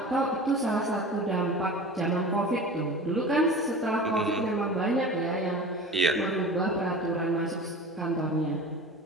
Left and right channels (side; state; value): both; normal; correlation 0.36